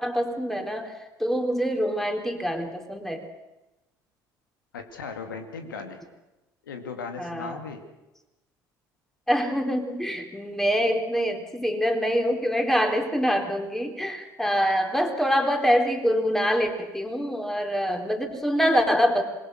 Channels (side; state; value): both; normal; correlation 0.87